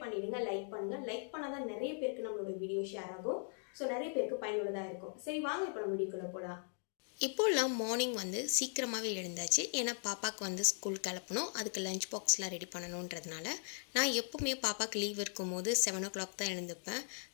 பண்ணிடுங்க, லைக் பண்ணுங்க. லைக் பண்ணாதான் நிறைய பேருக்கு நம்மளோட வீடியோ ஷேர் ஆகும். ஸோ நிறைய பேருக்கு பயனுள்ளதாக இருக்கும். சரி வாங்க இப்போ நம்ம வீடியோக்குள்ள போகலாம். இப்போல்லாம் மார்னிங் சீக்கிரமாகவே எழுந்தாச்சு. ஏன்னா பாப்பாவுக்கு ஸ்கூல் கிளப்பணும், அதுக்கு லஞ்ச் பாக்ஸ்லாம் ரெடி பண்ணணுன்றதுனால நான் எப்போவுமே பாப்பாவுக்கு லீவ் இருக்கும்போது 7 o'clock தான் எழுந்துப்பேன்.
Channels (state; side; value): silent; right; 52 dB below the other